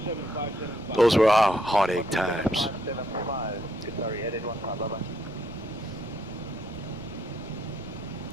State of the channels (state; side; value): noise; left; rumble, 16 dB below the sound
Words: those were our heartache times.